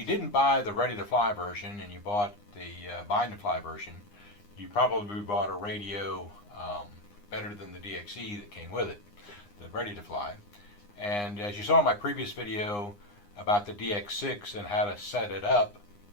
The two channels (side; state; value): right; late; 9.8 ms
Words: didn't buy the Ready to Fly version and you bought the Bind to Fly version, you probably bought a radio better than the DXE that came with it, the Ready to Fly. And as you saw in my previous video about the DX6 and how to set it up,